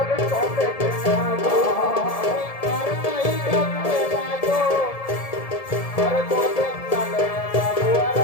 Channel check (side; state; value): right; late; 1.7 ms